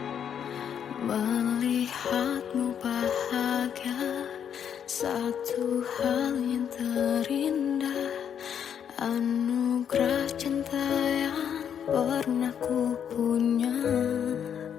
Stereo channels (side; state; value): right; quieter; 8.5 dB